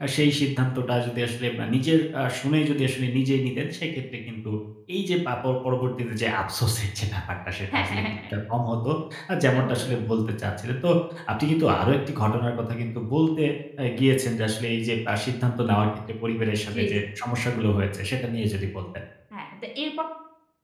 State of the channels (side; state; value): both; identical; correlation 1.00